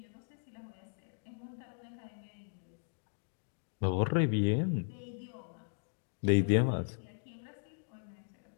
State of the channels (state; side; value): silent; right; digital silence